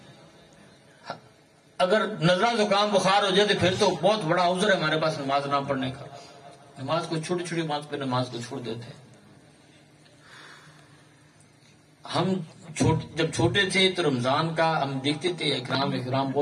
اگر نزلہ زکام بخار ہو جائے تو پھر تو بہت بڑا عذر ہے ہمارے پاس نماز نہ پڑھنے کا۔ نماز کو چھوٹی چھوٹی بات پہ نماز کو چھوڑ دیتے ہیں۔ ہم جب چھوٹے تھے تو رمضان کا ہم دیکھتے تھے احترام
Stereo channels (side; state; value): both; identical; correlation 1.00